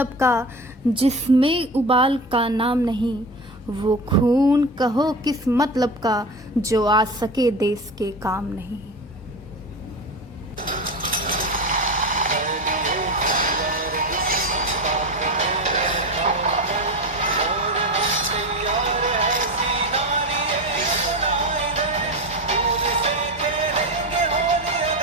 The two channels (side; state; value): both; normal; correlation 0.24